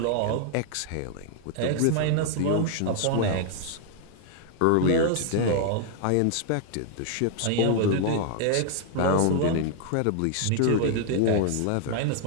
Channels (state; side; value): different; both; correlation 0.00